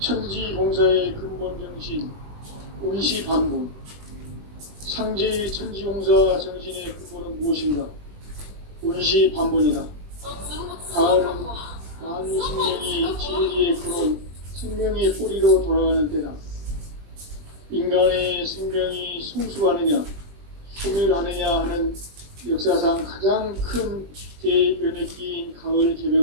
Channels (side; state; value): left; late; 20 ms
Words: 근본 정신 운시반복. 상제의 천지공사 정신의 근본은 무엇인가? 운시반복이다. 가을은 만유 생명이 진리의 근원, 생명의 뿌리로 돌아가는 때다. 인간의 생명이 성숙하느냐, 소멸하느냐 하는 역사상 가장 큰 대변혁기인 가을